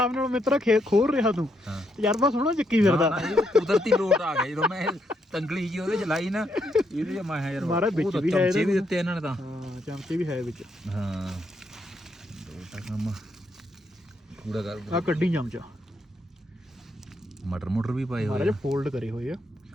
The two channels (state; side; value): normal; both; correlation 0.77